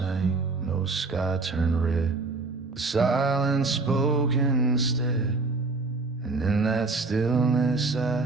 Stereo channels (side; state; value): left; quieter; 3.7 dB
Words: no sky turned red, the silence spoke instead. And in that stillness